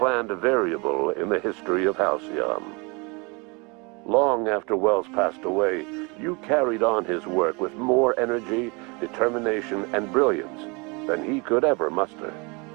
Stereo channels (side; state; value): left; quieter; 29.3 dB